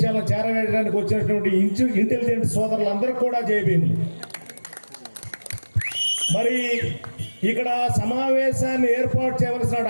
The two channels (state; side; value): inverted; both; correlation -1.00